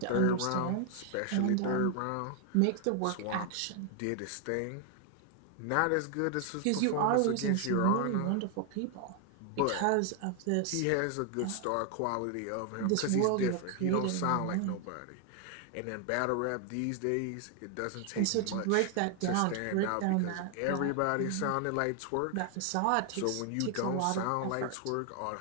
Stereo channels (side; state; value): both; different; correlation 0.00